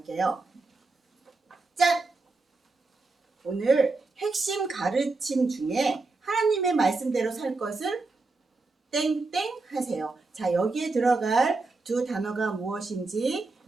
짠! 오늘 핵심 가르침 중에 하나님의 말씀대로 살 것을 땡땡 하세요. 자, 여기에 들어갈 두 단어가 무엇인지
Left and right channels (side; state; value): left; quieter; 3.6 dB